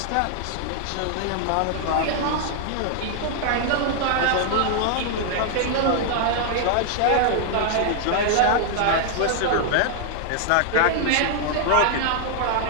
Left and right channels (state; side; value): different; both; correlation 0.00